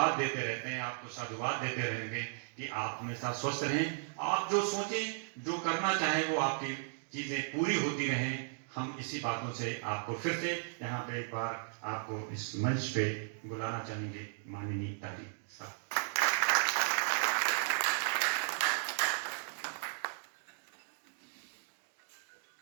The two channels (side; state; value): left; silent; digital silence